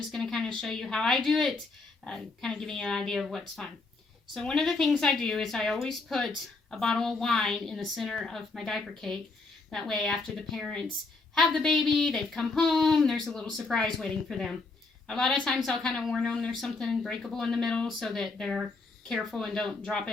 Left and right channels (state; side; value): quieter; right; 3.7 dB